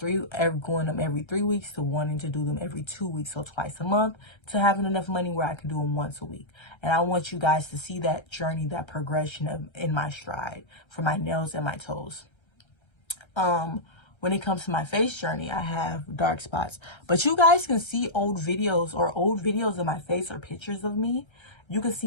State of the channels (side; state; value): right; late; 1.3 ms